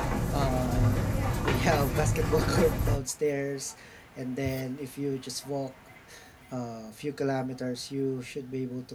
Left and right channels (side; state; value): both; identical; correlation 1.00